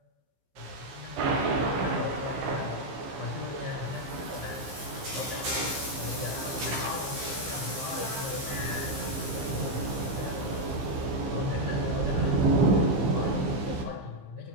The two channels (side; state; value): left; late; 15 ms